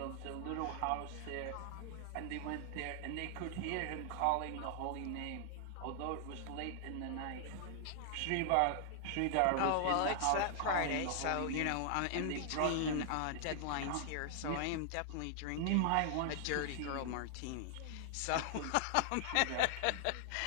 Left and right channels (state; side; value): different; both; correlation -0.01